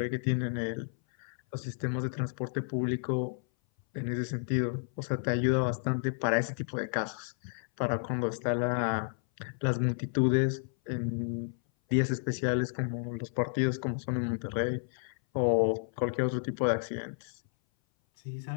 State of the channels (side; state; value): right; silent; 57 dB below the other